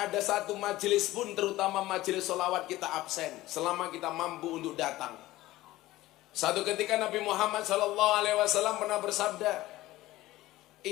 satu majelis pun, terutama majelis sholawat, kita absen selama kita mampu untuk datang. Satu ketika Nabi Muhammad SAW pernah bersabda,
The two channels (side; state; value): right; quieter; 17.0 dB